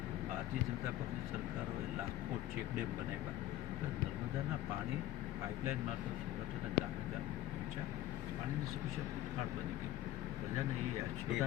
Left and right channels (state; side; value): quieter; right; 14.1 dB